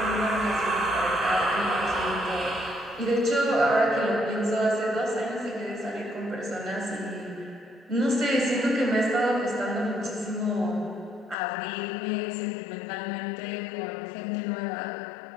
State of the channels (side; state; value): right; drops out; at 11.4 s